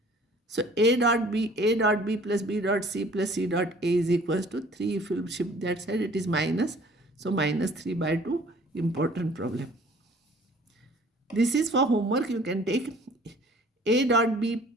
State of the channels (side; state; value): both; normal; correlation 0.53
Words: So A dot B plus B dot C plus C dot A is equals to 3. If you shift that side, it is minus. So minus 3 by 2, important problem. This is for homework. You can take A dot B